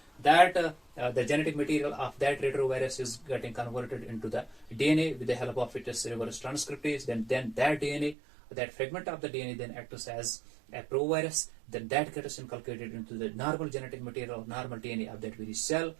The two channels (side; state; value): left; drops out; at 8.2 s